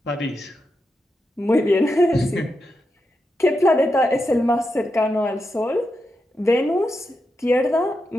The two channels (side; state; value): both; normal; correlation 0.86